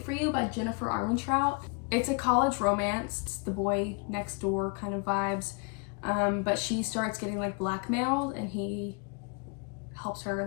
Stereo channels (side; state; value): right; quieter; 34.1 dB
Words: for You by Jennifer Armentrout. It's a college romance. It's the boy next door kind of vibes. But she starts getting like blackmailed, and he helps her